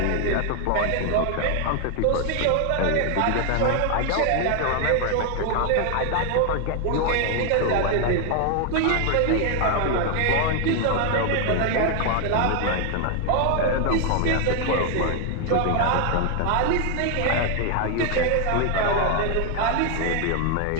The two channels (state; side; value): different; both; correlation 0.00